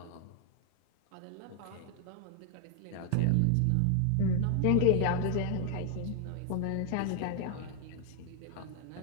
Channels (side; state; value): both; different; correlation 0.00